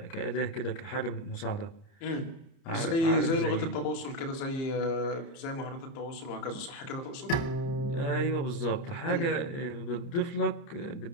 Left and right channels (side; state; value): right; late; 30 ms